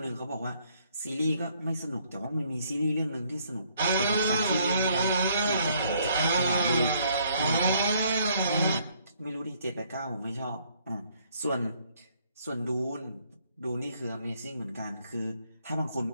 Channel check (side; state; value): both; inverted; correlation -0.67